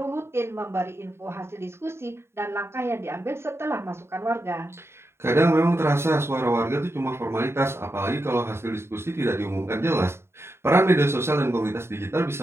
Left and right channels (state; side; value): late; left; 0.12 ms